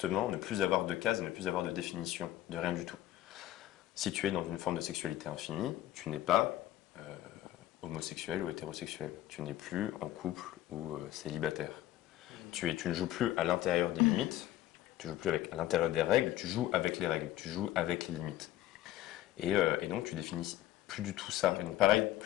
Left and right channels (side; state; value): right; quieter; 14.0 dB